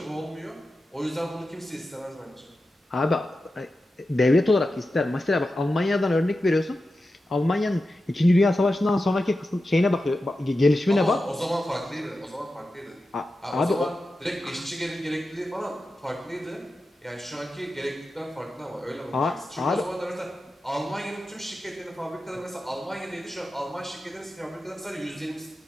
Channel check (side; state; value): both; normal; correlation 0.92